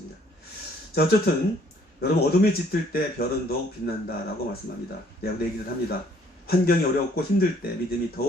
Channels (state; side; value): normal; both; correlation 0.62